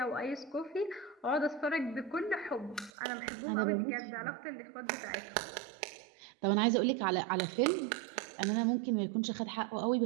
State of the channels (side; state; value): left; drops out; at 2.9 s